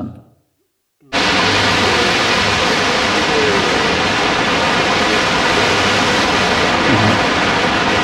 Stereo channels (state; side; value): identical; both; correlation 1.00